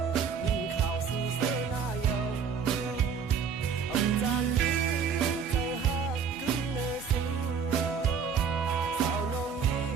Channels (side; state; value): left; quieter; 6.6 dB